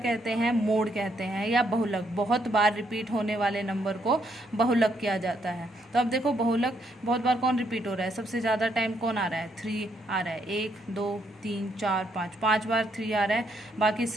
हैं? मोड कहते हैं, या बहुलक। बहुत बार रिपीट होने वाले नंबर को बहुलक किया जाता है। तो अब देखो बहुलक बहुत बार कौन रिपीट हो रहा है? सबसे ज़्यादा टाइम कौन आ रहा है? 3 आ रहा है। 1 2 3 4 5, 5 बार 3 आ रहा है, बाकी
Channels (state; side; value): normal; both; correlation 0.74